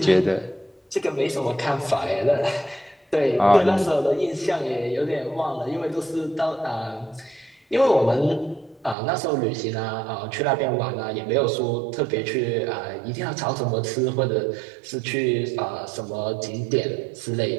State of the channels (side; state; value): left; drops out; at 9.0 s